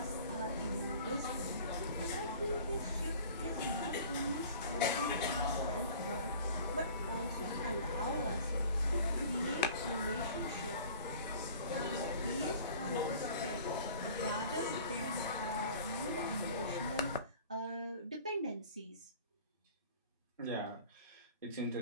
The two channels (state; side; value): inverted; both; correlation -0.46